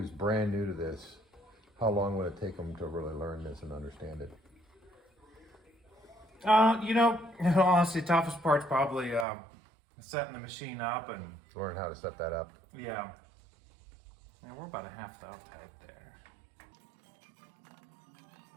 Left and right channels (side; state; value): left; drops out; at 9.2 s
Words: brand new to this, how long would it take them to really learn this and understand it? You know, honestly, toughest part's probably setting the machine up and Learn how to set that up. yeah. And we're about a half thou tight there.